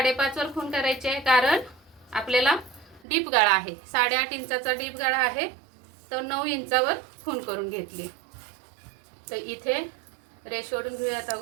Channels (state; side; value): drops out; left; at 3.0 s